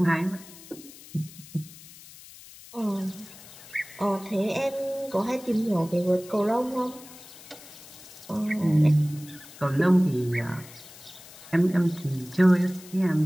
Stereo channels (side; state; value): left; noise; hiss, 19 dB below the sound